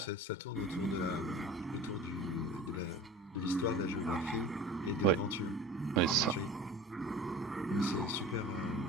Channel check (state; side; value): normal; both; correlation 0.38